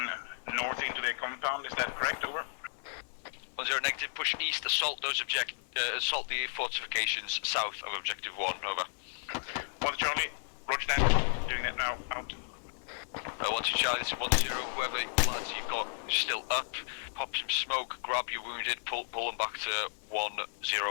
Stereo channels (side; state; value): right; silent; digital silence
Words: north into the compound, is that correct? Over. 10 negative, push east, assault those assault the fortifications south of Objective 1, over. 1 to Charlie, roger that, doing that now, out. 1 to Charlie, this is 10, whoever lads you've got still up, pop some smoke, grab your wounded, pull them back to